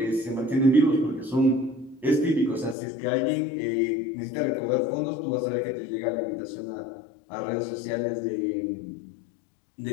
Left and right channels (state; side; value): drops out; right; at 2.8 s